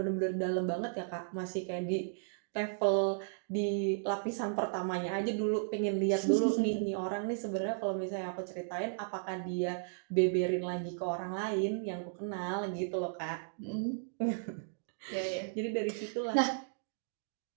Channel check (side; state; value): left; silent; digital silence